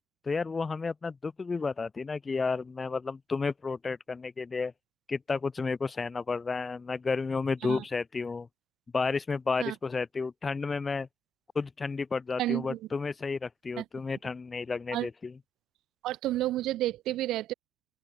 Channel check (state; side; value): normal; both; correlation 0.80